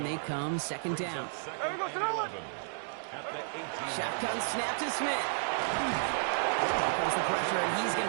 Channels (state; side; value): silent; left; digital silence